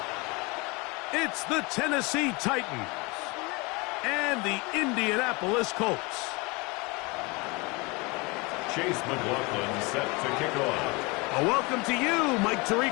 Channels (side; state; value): right; quieter; 26.9 dB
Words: It's the Tennessee Titans and the Indianapolis Colts. Chase McLaughlin set to kick off. A welcome to you, Mike